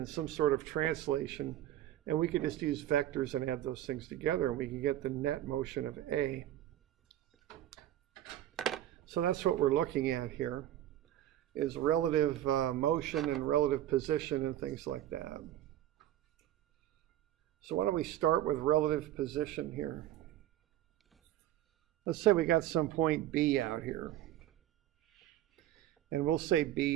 some sort of translation, and we could just use vectors and add those things together, and we can get the net motion of A. So that's what we're looking at here, is relative motion and relative position and things like that. So why don't we start with relative position here. Let's say we got some point B out here. And we'll say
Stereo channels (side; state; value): left; quieter; 12.8 dB